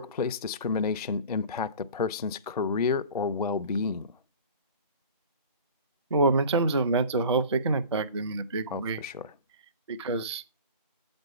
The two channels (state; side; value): inverted; both; correlation -0.39